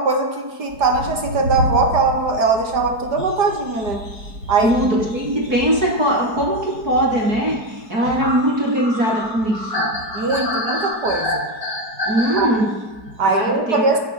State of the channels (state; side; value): late; left; 4.6 ms